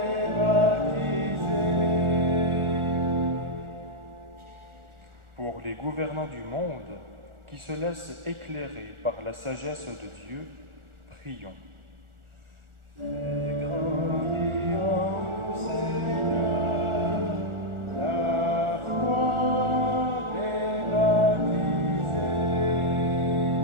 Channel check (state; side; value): late; left; 1.4 ms